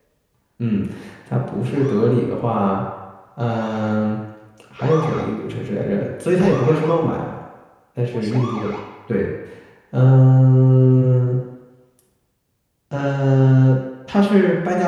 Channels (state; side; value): identical; both; correlation 1.00